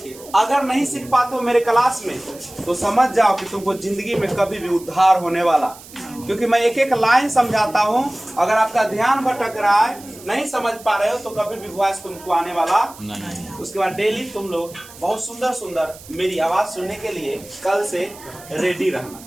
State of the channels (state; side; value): noise; right; hiss, 19 dB below the sound